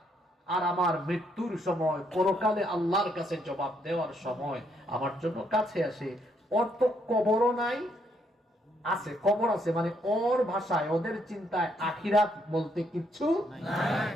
আর আমার মৃত্যুর সময় পরকালে আল্লাহর কাছে জবাব দেওয়ার সময় আমার জন্য কাছে আসে। ওর তো কবরও নাই, আছে কবর আছে, মানে ওর ভাষায় ওদের চিন্তায় আখিরাত বলতে কিচ্ছু নাই।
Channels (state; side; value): normal; both; correlation 0.73